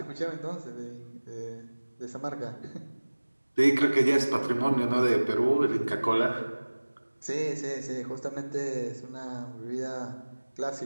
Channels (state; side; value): inverted; both; correlation -1.00